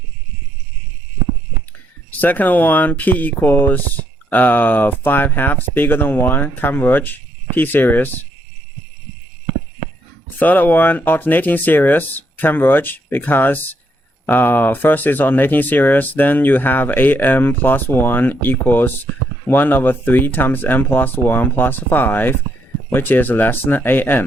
Second one, p equals 5/2 bigger than 1, converge, p series. Third one, alternating series, converge, because first is alternating series, then you have am plus 1 equals 1 over 3 times m plus 1 plus 5, which is less than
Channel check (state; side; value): normal; both; correlation 0.74